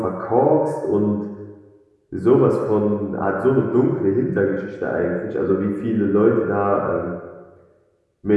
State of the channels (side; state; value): both; identical; correlation 1.00